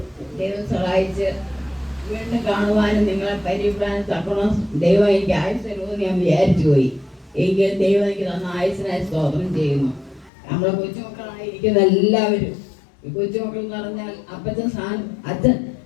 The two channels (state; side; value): drops out; right; at 10.3 s